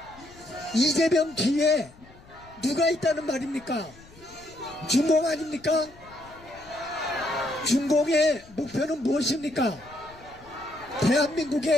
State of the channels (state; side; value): noise; left; rumble, 23 dB below the sound